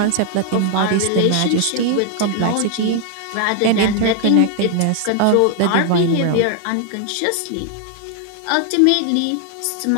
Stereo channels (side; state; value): both; different; correlation 0.00